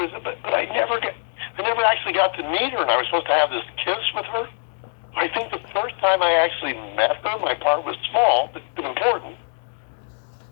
I never actually got to meet her, and I was supposed to have this kiss with her. I think the first time I actually met her, my part was small but important.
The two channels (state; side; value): silent; right; 60 dB below the other